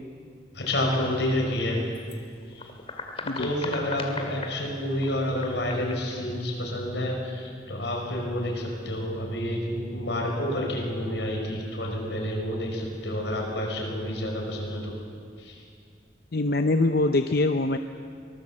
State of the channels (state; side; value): normal; both; correlation 0.43